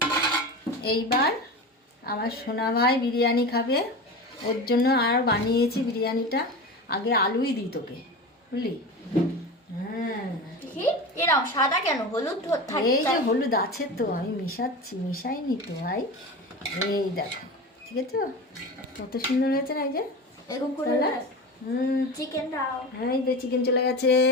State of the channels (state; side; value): normal; both; correlation 0.28